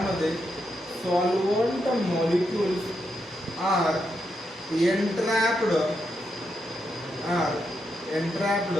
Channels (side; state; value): both; normal; correlation 0.83